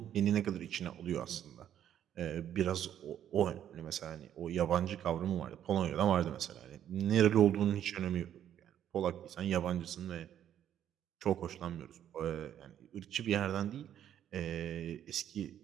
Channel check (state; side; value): quieter; left; 10.4 dB